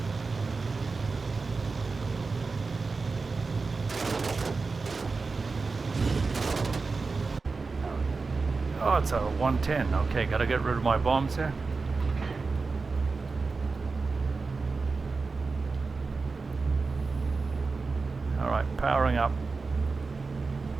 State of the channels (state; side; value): quieter; left; 4.2 dB